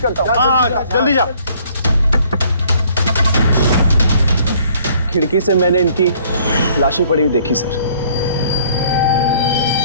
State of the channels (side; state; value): both; inverted; correlation -0.59